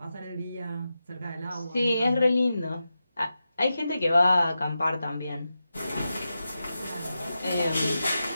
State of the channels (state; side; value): inverted; both; correlation -0.90